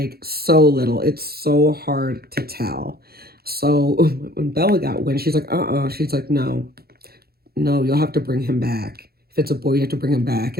so little, it's so hard to tell. So when Bella got wind, she's like, she's like, no, you'll have to bring him back. If it's a boy, you have to bring him back.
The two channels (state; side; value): late; left; 0.45 ms